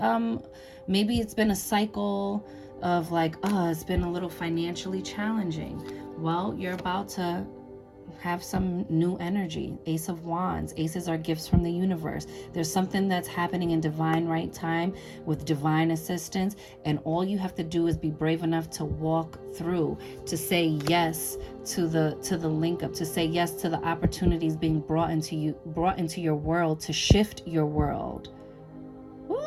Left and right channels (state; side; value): identical; both; correlation 1.00